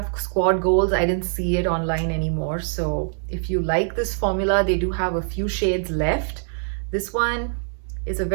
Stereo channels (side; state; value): left; silent; digital silence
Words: Squad Goals, I didn't see it online anymore. So if you like this formula, they do have a few shades left. This one is a